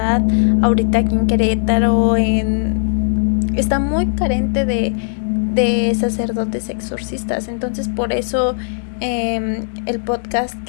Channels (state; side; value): silent; right; digital silence